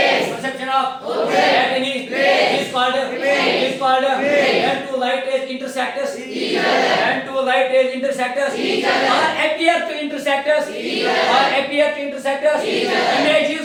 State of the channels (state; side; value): identical; both; correlation 1.00